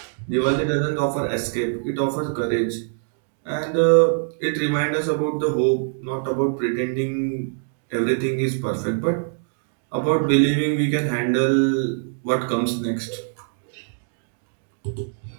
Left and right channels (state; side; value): silent; left; digital silence